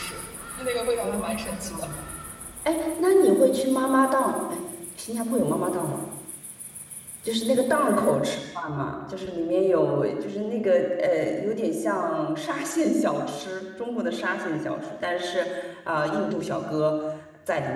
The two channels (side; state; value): both; identical; correlation 1.00